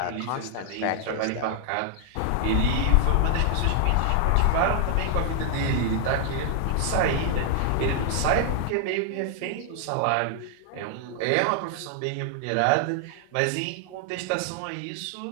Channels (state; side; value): different; both; correlation 0.00